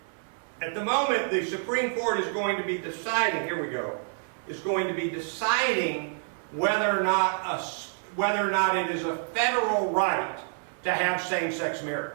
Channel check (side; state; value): left; silent; 59 dB below the other